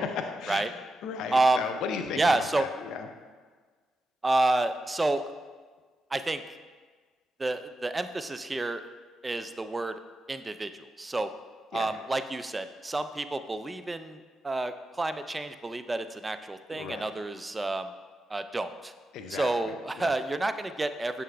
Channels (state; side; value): normal; both; correlation 0.89